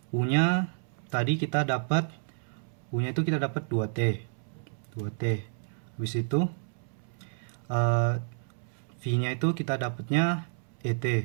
U-nya tadi kita dapat U-nya itu kita dapat 2T. 2T. Habis itu V-nya itu kita dapatnya ET,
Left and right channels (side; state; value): left; silent; 58 dB below the other